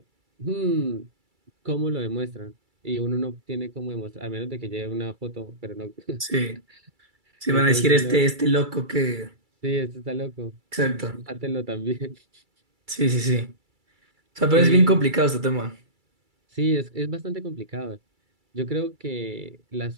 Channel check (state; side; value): late; left; 2.3 ms